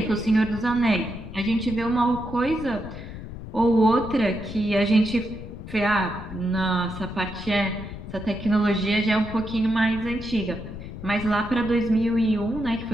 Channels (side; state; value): left; noise; rumble, 11 dB below the sound